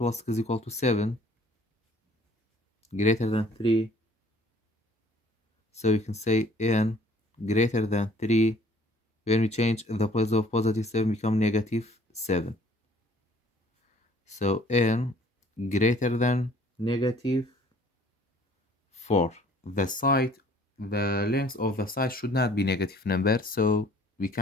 6 is equal to 7, greater than 3. So you can say n greater than 3. When we change the place of positive 7 become negative 7. So n greater than negative 4. The length of the side should not be negative number, so we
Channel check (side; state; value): both; normal; correlation 0.56